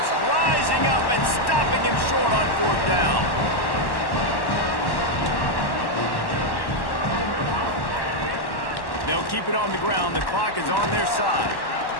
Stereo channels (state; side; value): late; right; 1.1 ms